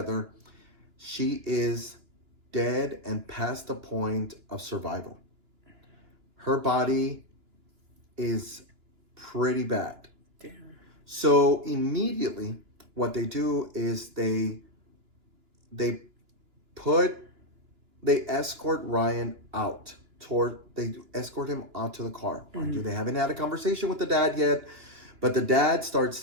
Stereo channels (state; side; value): late; left; 2.9 ms